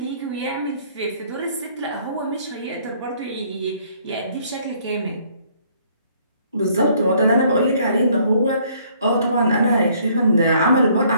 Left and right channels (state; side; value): inverted; both; correlation -0.63